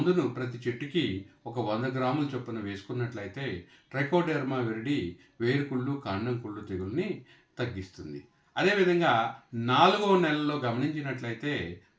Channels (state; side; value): identical; both; correlation 1.00